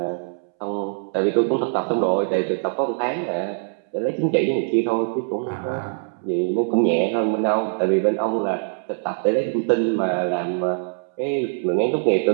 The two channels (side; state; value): left; silent; 64 dB below the other